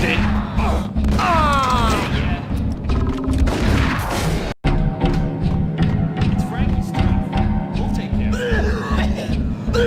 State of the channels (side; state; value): both; identical; correlation 1.00